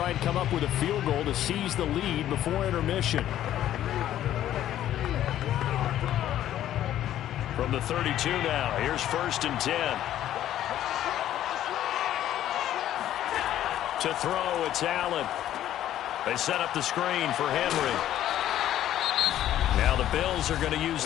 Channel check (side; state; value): right; quieter; 12.1 dB